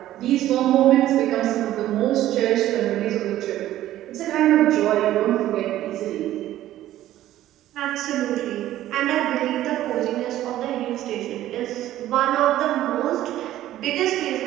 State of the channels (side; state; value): left; quieter; 13.7 dB